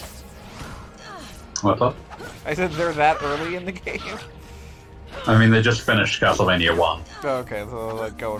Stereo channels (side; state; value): both; identical; correlation 1.00